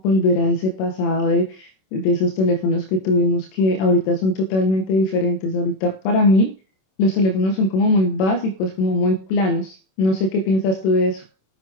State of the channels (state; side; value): late; right; 26 ms